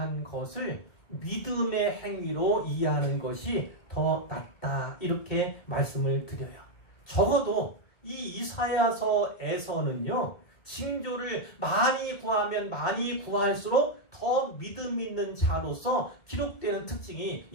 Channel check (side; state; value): right; late; 2.4 ms